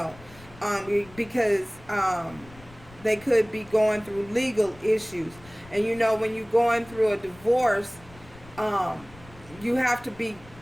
because they could be going through legal issues. And you know, when you're going through a divorce, you have to be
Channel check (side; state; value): left; noise; rumble, 22 dB below the sound